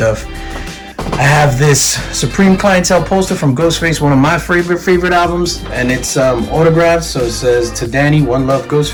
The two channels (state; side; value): identical; both; correlation 1.00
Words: I have this Supreme Clientele poster from Ghostface, one of my favorite albums, and it's autographed. So it says, "To Danny, one love,